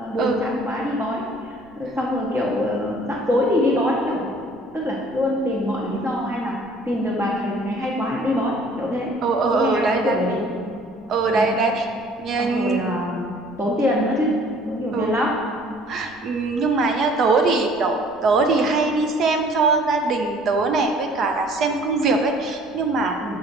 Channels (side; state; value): left; noise; rumble, 28 dB below the sound